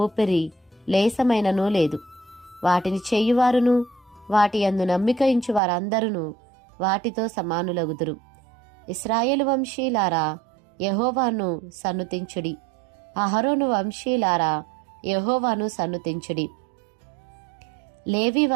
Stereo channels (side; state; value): left; drops out; at 5.6 s